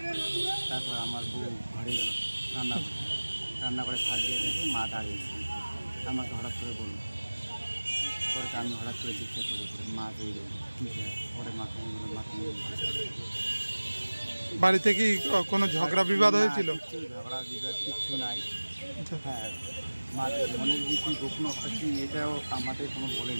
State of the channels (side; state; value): both; inverted; correlation -1.00